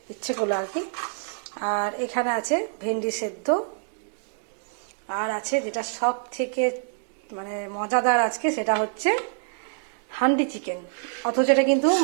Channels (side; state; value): left; silent; digital silence